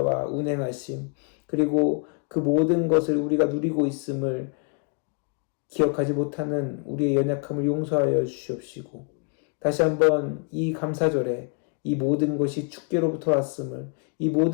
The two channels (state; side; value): quieter; right; 39.2 dB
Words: 운행하심, 그리고 그 모든 것을 우리가 누리고 있음을 기억하지 못하는 우리의 연약함을 용서하여 주시옵시고, 다시 한번 이 감사절에 이 모든 것이 주께로부터 왔음을, 이